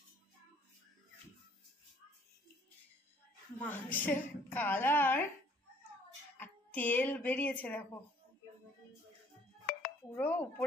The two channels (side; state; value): both; normal; correlation 0.60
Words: মাংসের কালার আর তেল বেরিয়েছে দেখো, পুরো